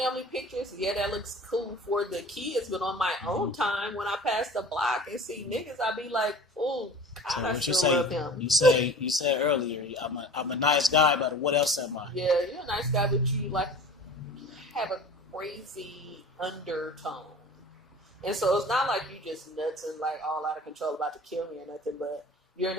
pictures. Yeah, that looks cool for the kids. But on my own time, when I pass the block and see niggas, I be like, oh, God, I still love him. You said earlier, I'm a nice guy, but what else am I? Yeah, you're a nice guy, but you like have a crazy undertone. And so it's not like you just nuts and like all out of control about to kill me or nothing, but you're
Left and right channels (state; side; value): normal; both; correlation 0.40